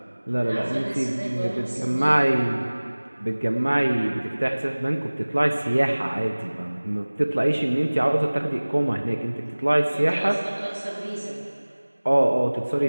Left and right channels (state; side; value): inverted; both; correlation -1.00